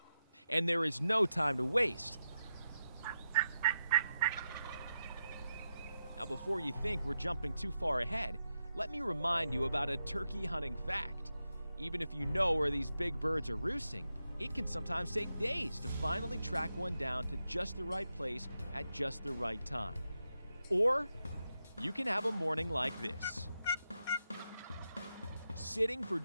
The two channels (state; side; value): inverted; both; correlation -0.87